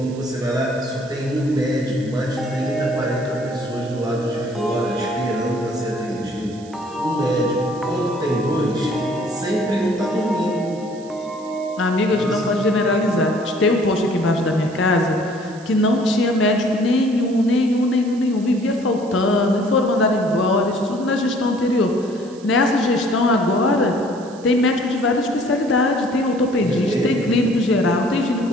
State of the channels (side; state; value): right; noise; hiss, 24 dB below the sound